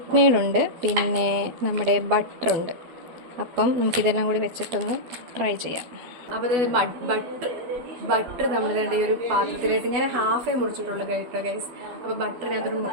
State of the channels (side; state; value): left; late; 12 ms